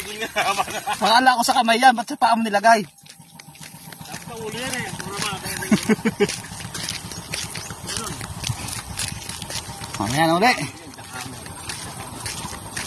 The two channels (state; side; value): identical; both; correlation 1.00